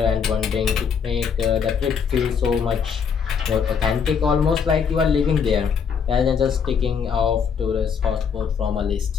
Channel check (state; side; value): quieter; right; 6.6 dB